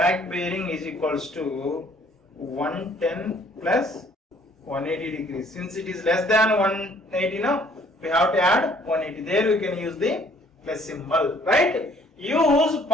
bearing is equals to 110 plus 180 degrees. Since it is less than 180 now, we have to add 180. There we can use the plus symbol, right? Use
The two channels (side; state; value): both; normal; correlation 0.60